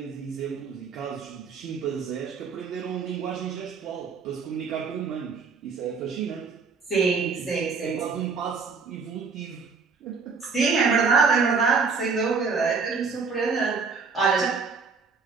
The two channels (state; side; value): quieter; left; 5.1 dB